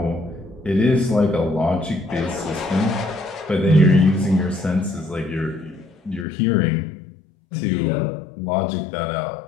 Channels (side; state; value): right; drops out; at 6.2 s